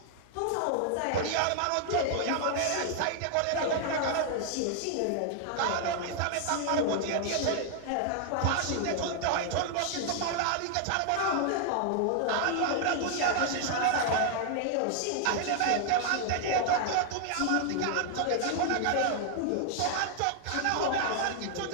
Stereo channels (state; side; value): different; both; correlation 0.00